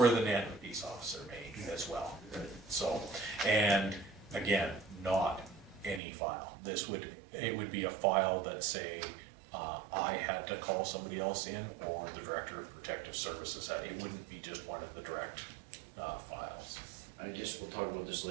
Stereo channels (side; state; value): left; drops out; at 6.0 s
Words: the Nanton peace officer may as well. So, and again, not any file. It would be a file that say, I had to call somebody else in, or the Director of Protective Services had. It wouldn't be just one of the direct files. I guess we'll talk about this